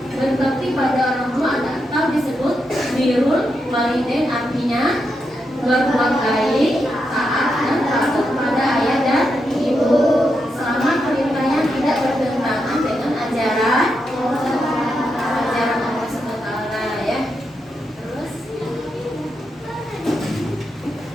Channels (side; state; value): both; normal; correlation 0.84